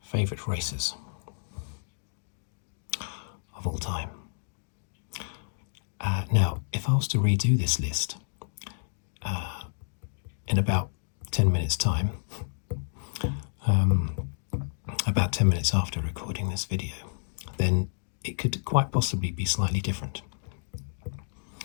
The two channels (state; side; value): silent; right; digital silence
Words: favourite racers of all time. Now, if I was to redo this list in about 10 minutes' time, about 10 minutes after recording this video, then it could quite possibly be slightly different.